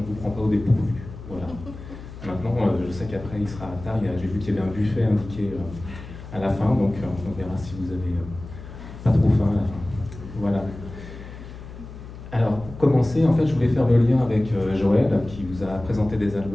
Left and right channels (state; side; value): noise; left; hum, 14 dB below the sound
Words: vous prend pas au dépourvu. Voilà. Maintenant, je sais qu'après il sera tard, j'ai vu qu'il y avait un buffet indiqué à la fin, donc on verra si vous avez pas trop faim à la fin. Voilà. Alors, pour commencer, en fait, je voulais faire le lien avec Joël, qui vous a présenté des